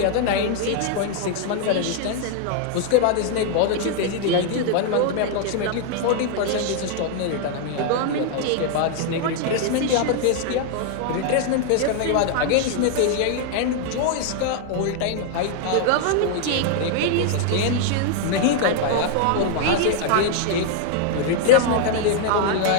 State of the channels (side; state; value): both; different; correlation 0.00